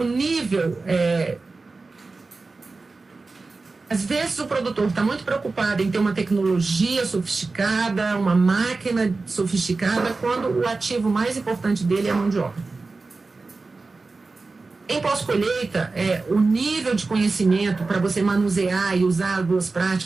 nível... Às vezes o produtor está muito preocupado em ter uma tecnologia sofisticada, uma máquina sofisticada, quando o ativo mais importante dele é a mão de obra. Em pós-colheita, o nível de conhecimento para você manusear e usar as boas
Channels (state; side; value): quieter; left; 3.8 dB